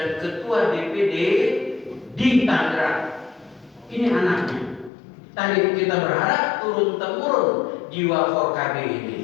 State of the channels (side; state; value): right; drops out; at 4.9 s